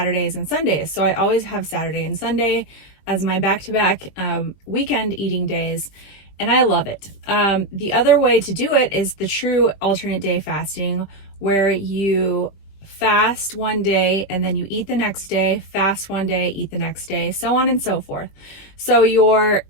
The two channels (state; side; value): late; right; 21 ms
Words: and Sundays. So I always have Saturday and Sunday as my back-to-back weekend eating days, and I love it. The other way to do it is the true alternate day fasting, where you fast one day and then you eat the next day, fast one day, eat the next day, so on and so forth. So your